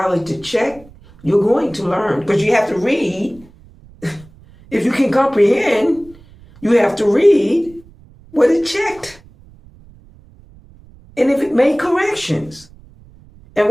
it to check, you're going to learn. Because you have to read. If you can comprehend, you have to read what it checked. And if it made corrections. And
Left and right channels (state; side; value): noise; right; rumble, 25 dB below the sound